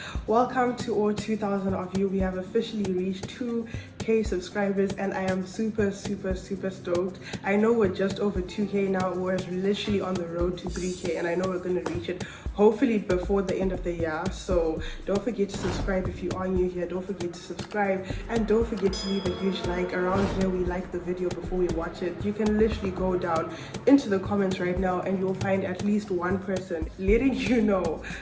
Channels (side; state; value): both; identical; correlation 1.00